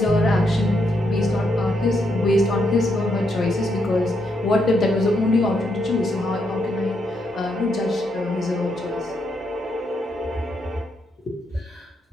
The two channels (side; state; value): both; normal; correlation 0.78